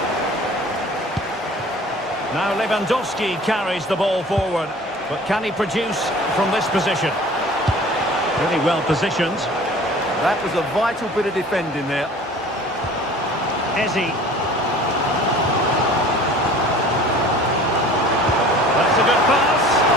Now Lewandowski carries the ball forward, but can he produce from this position? Really well positioned. That was a vital bit of defending there. Eze. That's a good pass.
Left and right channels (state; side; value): normal; both; correlation 0.46